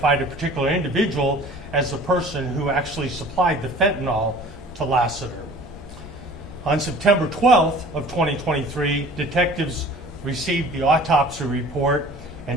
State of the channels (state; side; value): normal; both; correlation 0.46